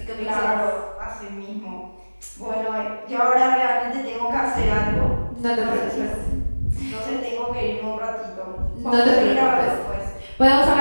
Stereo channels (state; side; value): inverted; both; correlation -1.00